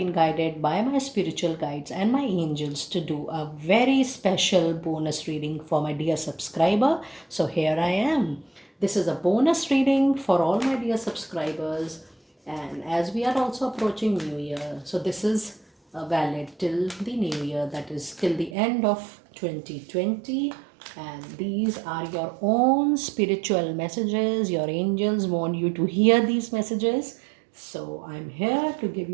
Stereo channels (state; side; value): drops out; left; at 18.6 s